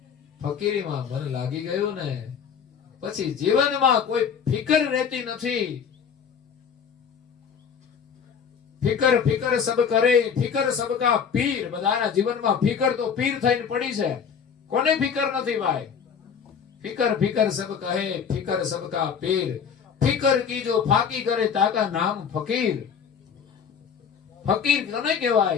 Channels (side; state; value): right; quieter; 6.9 dB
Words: ફકીરીમાં મન લાગી ગયું ને પછી જીવનમાં કોઈ ફિકર રહેતી નથી. ફિકર ફિકર સબ કરે, ફિકર સબકા પીર. બધાના જીવનમાં ફિકર તો પીર થઈને પડી છે. કોને ફિકર નથી ભાઈ? ફિકર ફિકર સબ કહે, ફિકર સબકા પીર. ફિકર કી જો ફાકી કરે તાકા નામ ફકીર. ફકીર કોને